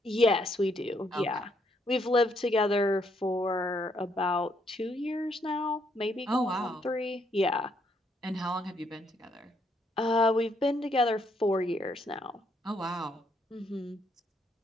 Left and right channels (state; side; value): normal; both; correlation 0.72